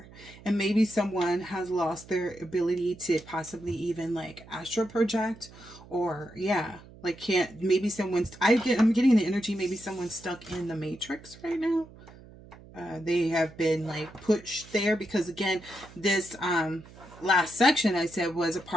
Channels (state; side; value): noise; right; hum, 20 dB below the sound